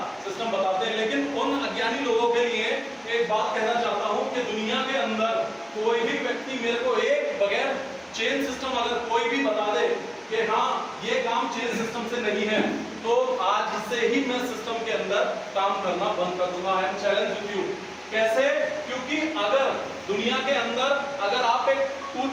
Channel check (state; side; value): identical; both; correlation 1.00